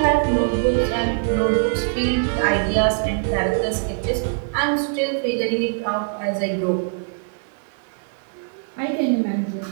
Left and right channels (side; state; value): left; silent; 59 dB below the other